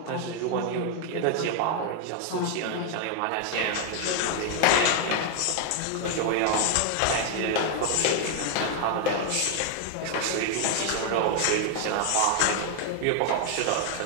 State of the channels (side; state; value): both; different; correlation 0.00